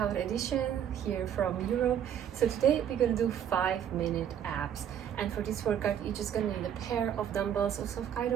edition here from Europe. So today we're gonna do 5-minute abs, and for this workout you're just gonna need a pair of dumbbells of some kind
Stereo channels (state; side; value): quieter; left; 9.4 dB